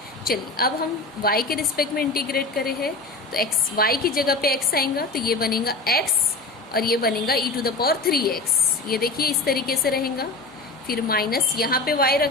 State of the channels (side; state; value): right; quieter; 3.3 dB